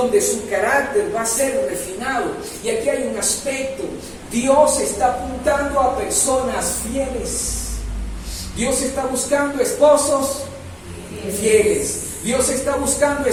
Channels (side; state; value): both; identical; correlation 1.00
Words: su carácter va a ser refinado. Y aquí hay un aspecto. Dios está apuntando a personas fieles. Dios está buscando esposos fieles. Dios está buscando